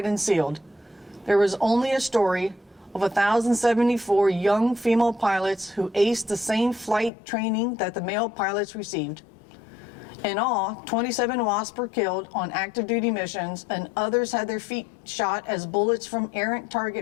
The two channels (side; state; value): right; drops out; at 7.1 s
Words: and sealed. There was only a story of 1,074 young female pilots who aced the same flight training that the male pilots received. In all, 27 WASP were killed on active duty missions, and others had their feet shot as bullets from errant